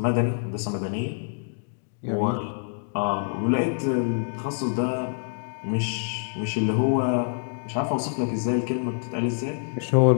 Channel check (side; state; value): right; silent; digital silence